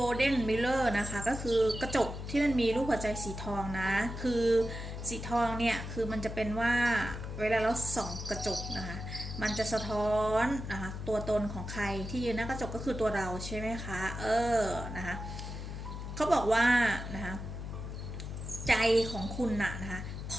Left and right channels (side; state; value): left; noise; hum, 7 dB below the sound